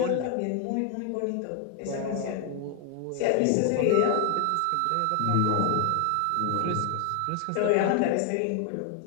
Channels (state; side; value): different; both; correlation 0.00